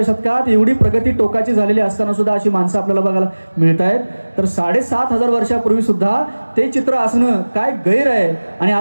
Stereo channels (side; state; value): both; inverted; correlation -1.00